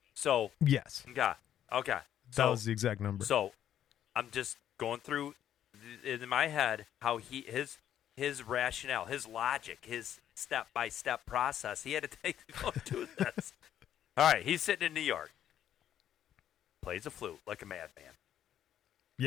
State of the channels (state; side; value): quieter; right; 10.6 dB